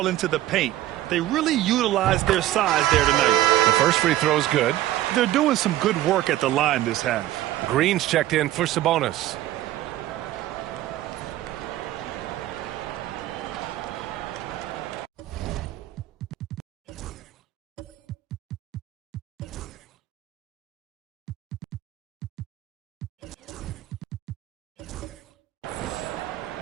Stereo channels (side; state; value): left; quieter; 14.5 dB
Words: into the paint. They really utilized their size there tonight. The first free throw is good. They're doing some good work at the line this half. Green's checked in for Sabonis.